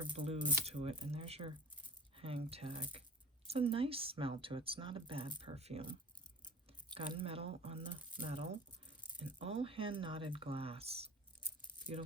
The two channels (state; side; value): normal; both; correlation 0.40